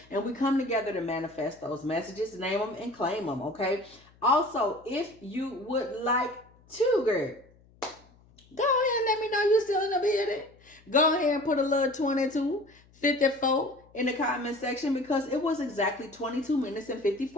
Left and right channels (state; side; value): noise; left; hum, 29 dB below the sound